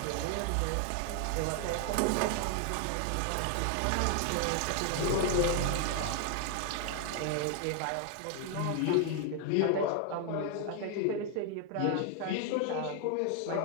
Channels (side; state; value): both; different; correlation 0.00